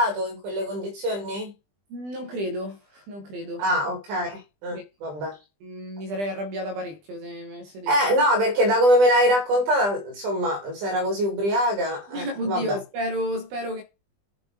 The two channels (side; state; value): left; late; 20 ms